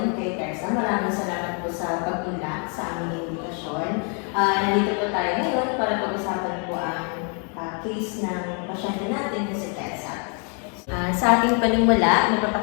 kay Tessa. Maraming salamat po sa pag-unlak sa aming invitasyon. Nandito po tayo ngayon para pag-usapan po ang case ng pasyente natin na si Tessa. Sa ating panimula,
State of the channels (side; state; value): right; quieter; 39.1 dB